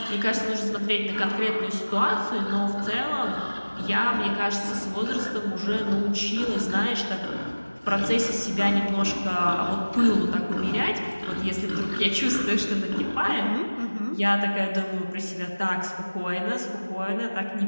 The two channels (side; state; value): both; inverted; correlation -1.00